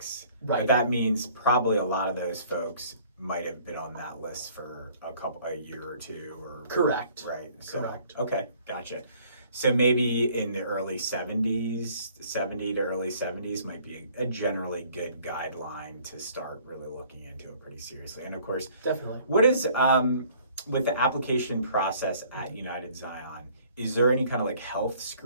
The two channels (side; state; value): both; inverted; correlation -0.57